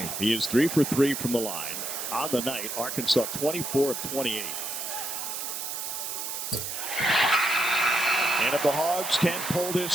He is 3 for 3 from the line. On the night, Arkansas 24 of 28. And if the Hogs can pull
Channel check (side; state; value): right; noise; hiss, 5 dB below the sound